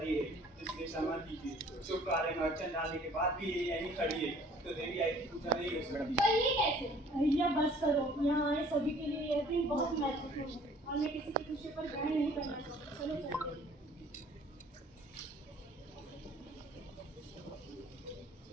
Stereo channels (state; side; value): normal; both; correlation 0.54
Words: है, इसलिए क्षमा कीजिए। शुभ कार्य में अड़चन डालने के बाद भी ये यहीं खड़ी है, तो देवी आई की पूजा नहीं हो सकती। पर ये कैसे? अहिल्या बस करो, यहाँ आए सभी के लिए यह दिन बहुत महत्वपूर्ण है और मैं किसी की खुशी पर ग्रहण नहीं करना चाहती। चलो चलते हैं।